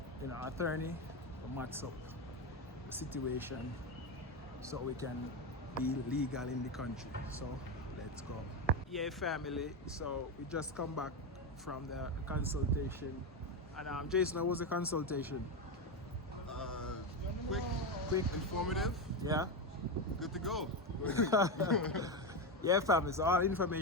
you know, attorney to match up the situation so we can be legal in the country. So let's go. Yeah, family, so we just come back from the consultation. And Jason, how was the consultation? Quick, informative. Yeah. Good to go. Yeah, family, so all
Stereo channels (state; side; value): normal; both; correlation 0.12